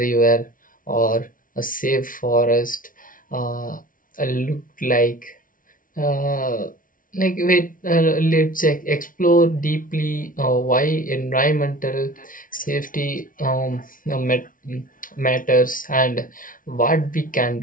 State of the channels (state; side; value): late; right; 0.39 ms